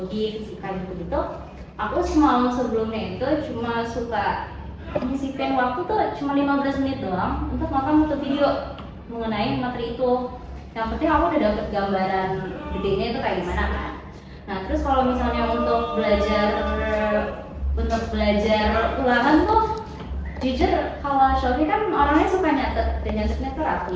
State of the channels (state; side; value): identical; both; correlation 1.00